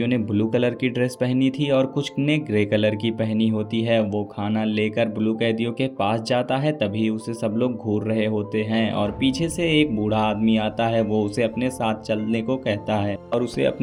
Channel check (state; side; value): identical; both; correlation 1.00